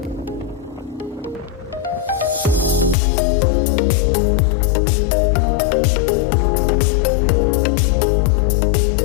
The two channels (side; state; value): right; drops out; at 3.0 s